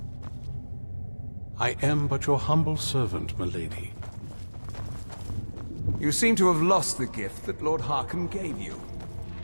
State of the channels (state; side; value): inverted; both; correlation -1.00